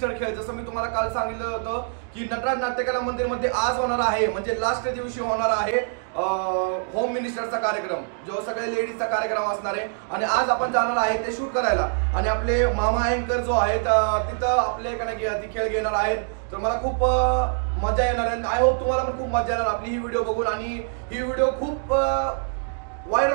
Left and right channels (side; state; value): left; silent; digital silence